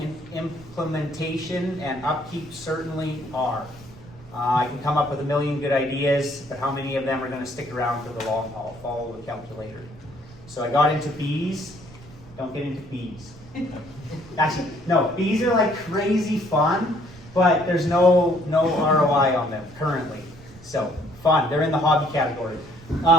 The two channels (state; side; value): noise; right; rumble, 21 dB below the sound